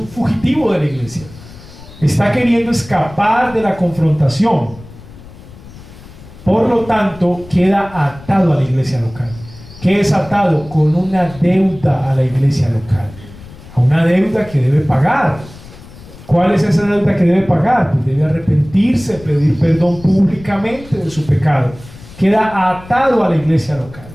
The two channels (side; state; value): left; noise; rumble, 19 dB below the sound